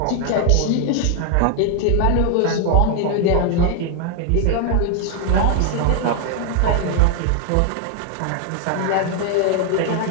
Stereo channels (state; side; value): different; both; correlation 0.00